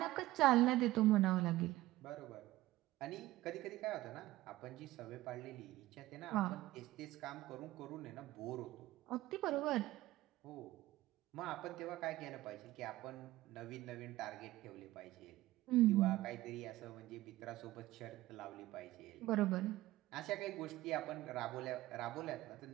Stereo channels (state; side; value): quieter; left; 17.0 dB